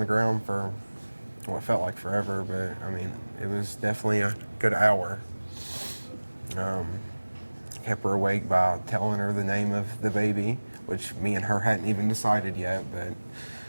ground for what felt like forever, but I mean, it was definitely a good hour. Kept her awake by telling her the name of the baby, which me and her hadn't even decided yet, but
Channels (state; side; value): inverted; both; correlation -1.00